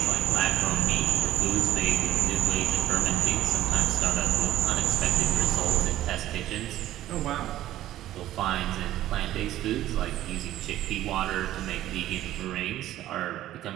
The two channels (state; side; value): quieter; left; 13.8 dB